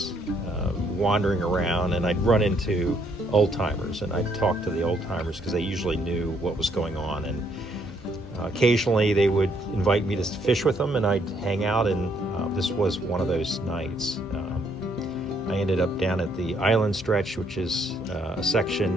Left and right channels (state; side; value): normal; both; correlation 0.69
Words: wandering around, and I'd run into old timers and I'd talk to the old timers because they usually knew what was going on, and occasionally they would invite me to fish with them and I'd hang out, and this was one of those nights. I ended up down at the Island Stretch, which is a